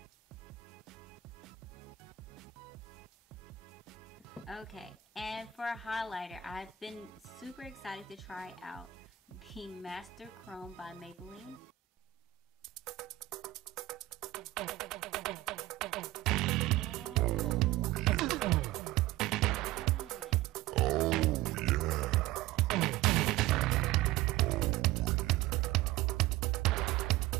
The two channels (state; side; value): quieter; left; 14.3 dB